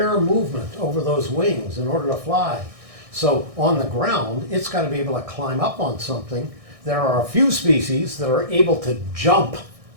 movement over those wings in order to fly. So on the ground, it's got to be able to climb up on something. There are a few species that are able to jump.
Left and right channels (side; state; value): left; late; 1.6 ms